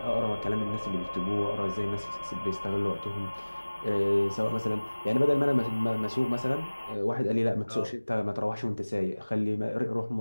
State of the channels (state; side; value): inverted; both; correlation -1.00